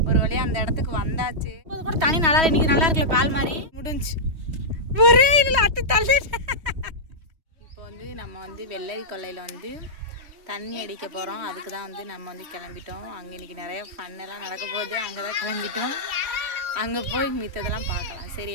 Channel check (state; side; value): late; left; 3.2 ms